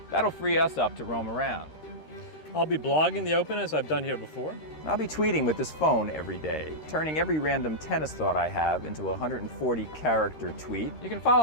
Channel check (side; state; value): right; late; 13 ms